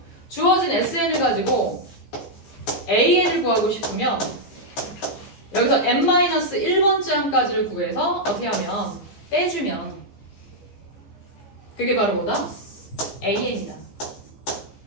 주어진 SN을 가지고 AN을 구하고 싶으면 여기서 n-1번째 항까지를 구해서 어떻게 하면 빼주면 그게 바로 뭐다? AN이다.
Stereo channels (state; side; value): late; right; 14 ms